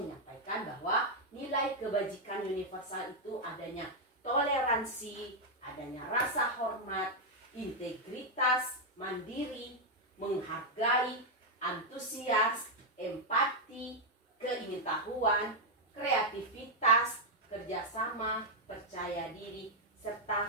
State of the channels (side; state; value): both; normal; correlation -0.01